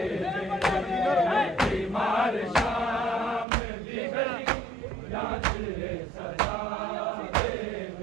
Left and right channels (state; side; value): drops out; left; at 3.5 s